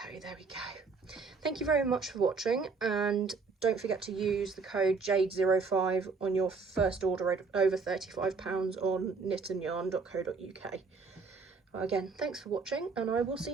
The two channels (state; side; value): quieter; left; 4.6 dB